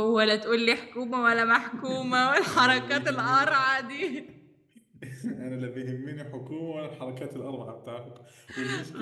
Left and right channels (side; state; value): both; identical; correlation 1.00